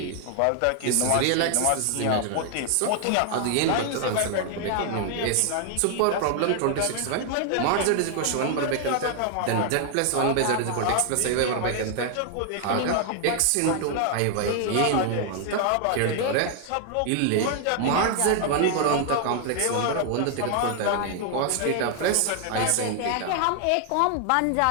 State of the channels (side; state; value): both; different; correlation 0.00